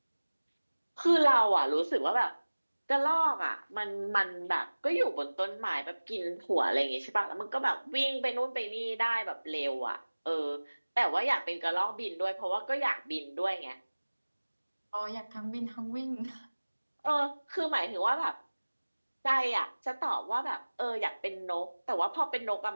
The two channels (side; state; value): both; inverted; correlation -1.00